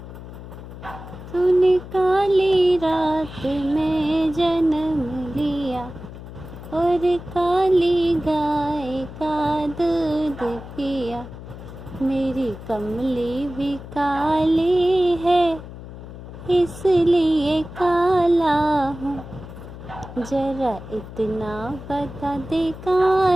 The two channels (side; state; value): left; noise; hum, 13 dB below the sound